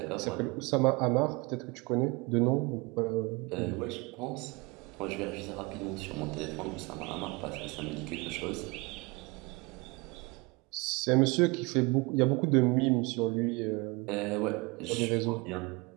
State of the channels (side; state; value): left; quieter; 26.5 dB